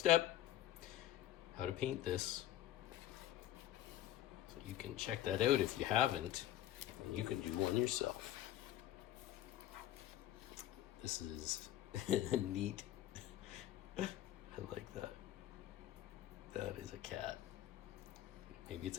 how to paint this. So you can check that out if you haven't, and you can do one yourself. This is neat. I like that. That is a cat. Maybe it's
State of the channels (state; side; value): quieter; right; 13.1 dB